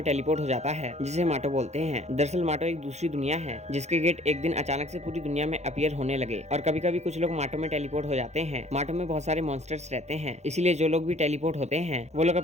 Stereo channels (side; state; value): left; late; 0.32 ms